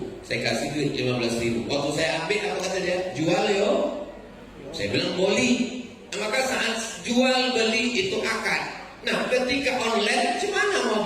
Saya kasih duit 15.000. Waktu saya ambil, apa kata dia? Jual yo. Saya bilang boleh. Nah, maka saat jual beli itu akad. Nah, ketika online, gimana mau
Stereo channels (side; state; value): both; identical; correlation 1.00